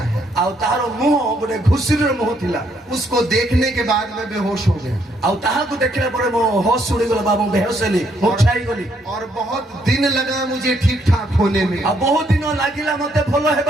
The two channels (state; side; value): normal; both; correlation 0.72